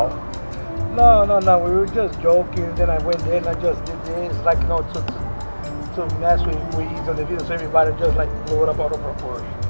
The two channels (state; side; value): inverted; both; correlation -1.00